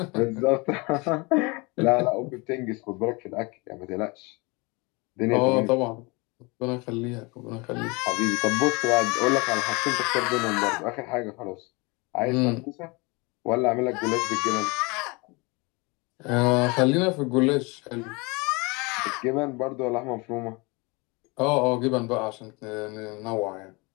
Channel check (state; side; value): quieter; right; 27.3 dB